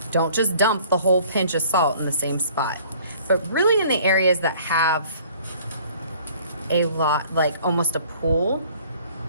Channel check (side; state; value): both; inverted; correlation -0.54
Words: Don't just dump the whole pinch of salt in the same spot, but really in the areas that have a lot, like almost a pool